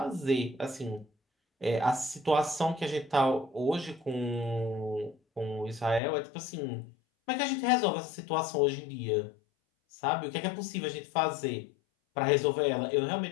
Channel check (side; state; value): right; drops out; at 6.0 s